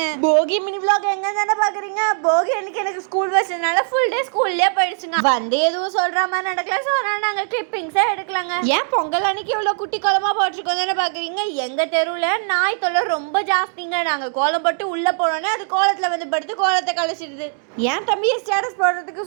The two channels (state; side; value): silent; left; digital silence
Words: போகி மினி vlog எங்க தானே பாக்குறீங்க. போகி அன்னைக்கு எனக்கு ஸ்கூல் வச்சதுனால ஃபுல் டே ஸ்கூல்லயே போயிடுச்சுங்க. வந்து எதுவும் சொல்ற மாதிரி நடக்கல. சோ நாங்க கிளிப்பிங்ஸே எடுக்கலாங்க. ஏன் பொங்கல் அன்னைக்கு இவ்வளவு குட்டி கோலமா போட்டுருக்கோம் தானே பாக்குறீங்க. எங்க தெருவுல நாய் தொல்லை ரொம்ப ஜாஸ்திங்க. நாங்க கோலம் போட்டு உள்ள போனோன்னே அது கோலத்துல வந்து படுத்து கோலத்தை கழிச்சிடுது. ஏன் தம்பியை ஸ்டேட்டஸ் போடுறதுக்கு